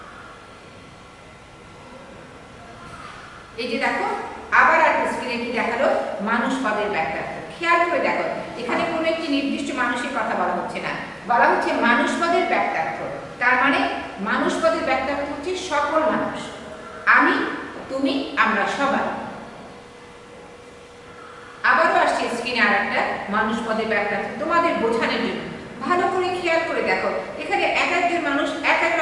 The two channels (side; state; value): both; identical; correlation 1.00